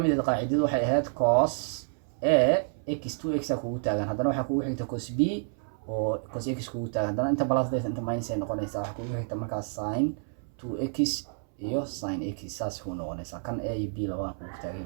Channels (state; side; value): silent; left; 58 dB below the other